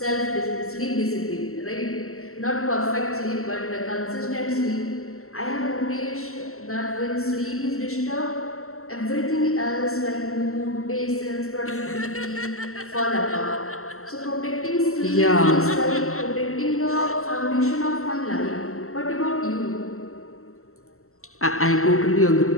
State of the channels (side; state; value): right; late; 0.63 ms